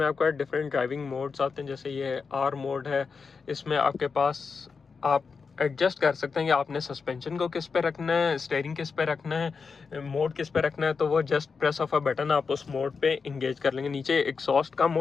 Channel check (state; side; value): quieter; right; 5.2 dB